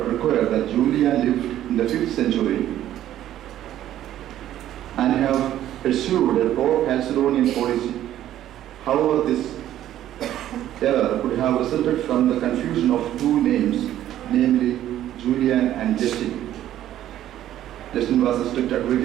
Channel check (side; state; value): left; quieter; 12.3 dB